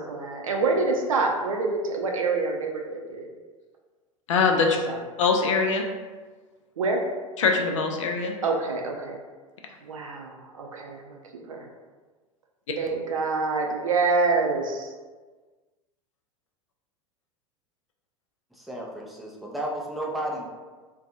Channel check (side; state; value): both; normal; correlation 0.16